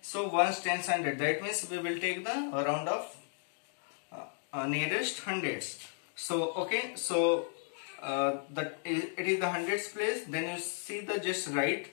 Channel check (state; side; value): silent; right; 55 dB below the other